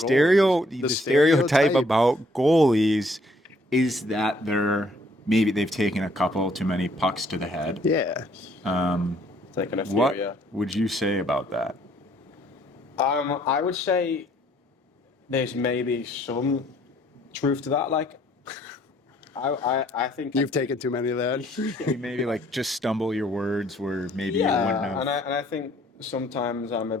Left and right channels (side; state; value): both; normal; correlation 0.64